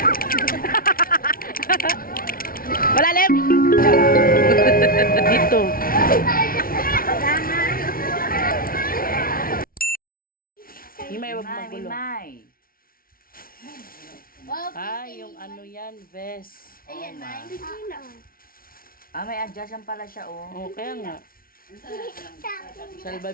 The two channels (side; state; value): right; late; 0.43 ms